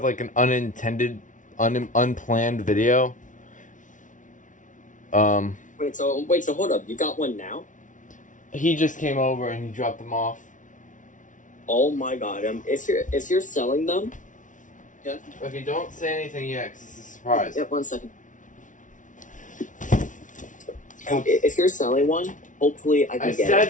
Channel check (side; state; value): right; late; 0.37 ms